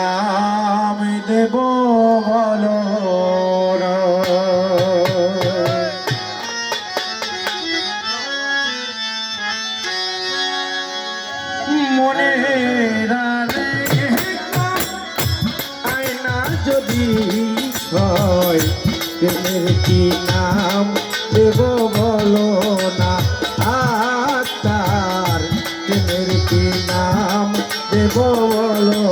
দেব বলো মনে আয়না যদি হয় প্রেমের কি নাম দেব বলো না আত্মার প্রেমের কি নাম দেব বলো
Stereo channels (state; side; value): identical; both; correlation 1.00